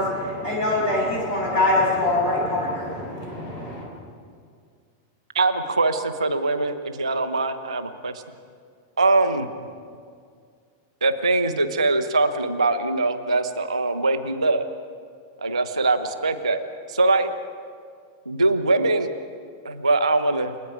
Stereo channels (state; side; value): inverted; both; correlation -0.62